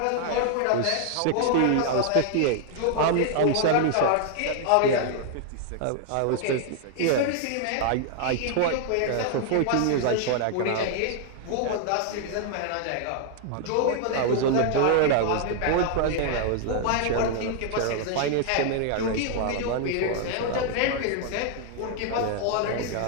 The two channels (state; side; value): different; both; correlation 0.00